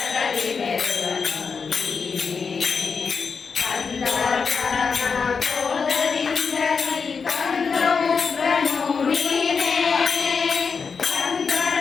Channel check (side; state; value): right; quieter; 5.5 dB